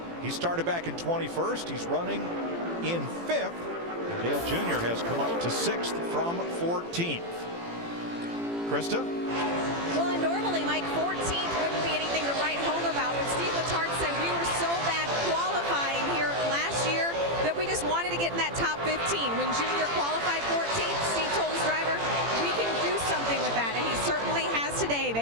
He started back in 21st. He's running in 5th. Dale Jr. has come up to 6th from 14th. Krista? Well, and normally, Mike, 14th wouldn't be anything to write home about. But Steve Letarte said we were so bad qualifying here last year that we just wanted to get in that top 15. When Junior qualified 14th, Steve told his driver, we can do something with that, and he certainly has today.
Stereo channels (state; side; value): late; left; 18 ms